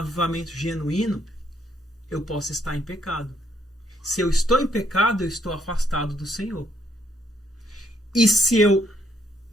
genuíno, eu posso estar em pecado. Se eu estou em pecado, eu estou afastado do Senhor. E se eu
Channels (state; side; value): normal; both; correlation 0.72